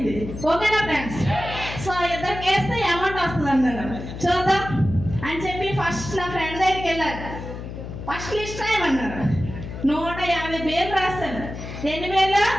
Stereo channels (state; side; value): noise; left; hum, 9 dB below the sound